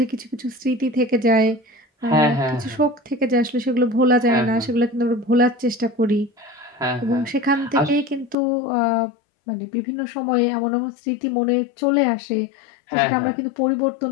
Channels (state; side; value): drops out; right; at 8.3 s